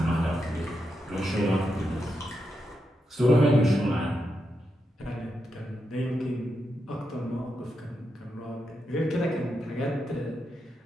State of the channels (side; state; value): both; normal; correlation 0.85